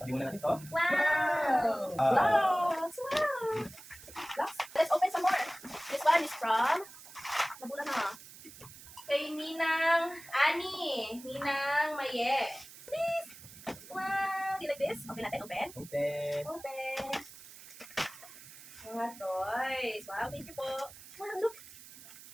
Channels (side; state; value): right; noise; hiss, 17 dB below the sound